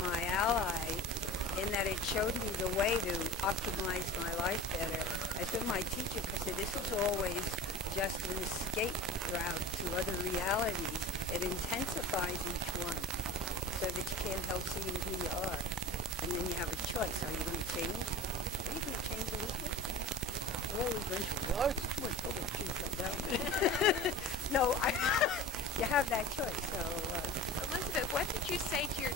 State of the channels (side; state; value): both; normal; correlation 0.35